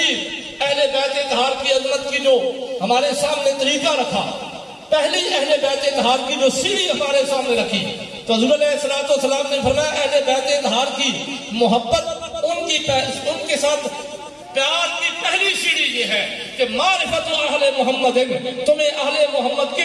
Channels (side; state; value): both; identical; correlation 1.00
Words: اہل بیت اطہار کی عظمت کی جو ہمارے سامنے طریقہ رکھا، پہلی اہل بیت اطہار کی جو سیڑھی ہمارے سامنے رکھی، تو حضور علیہ الصلوۃ والسلام نے فرمایا اہل بیت اطہار کی محبت، ان کے ساتھ پیار کی پہلی سیڑھی یہ ہے کہ معرفت اہل محمد، تمہیں اہل محمد کی